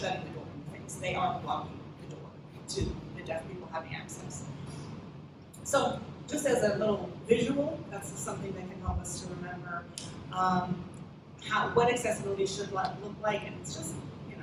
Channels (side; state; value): both; identical; correlation 1.00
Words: the door in the face. They are blocking the door to the deaf people having access. So just as a little visual, that's something that can help us to remember what accessibility should look like, and it's just,